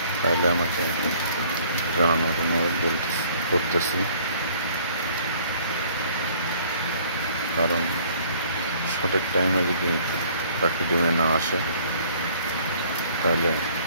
তাহলে আমাকে জানানোর অনুরোধ করতেছি। কারণ সঠিক টাইমে যদি পাখি ডিমে না আসে, তাহলে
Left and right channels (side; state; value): both; inverted; correlation -0.57